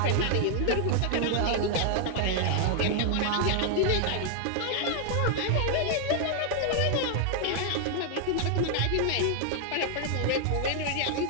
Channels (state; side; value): different; both; correlation 0.00